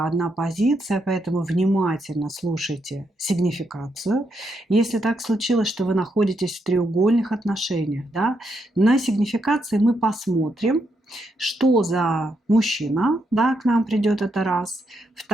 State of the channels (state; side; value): normal; both; correlation 0.80